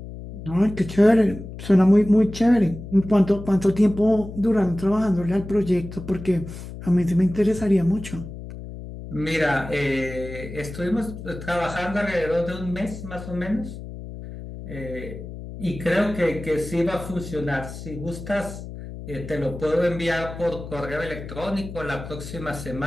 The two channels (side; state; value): left; noise; hum, 11 dB below the sound